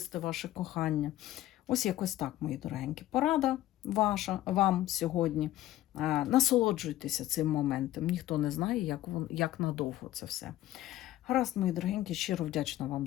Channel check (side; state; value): right; quieter; 14.4 dB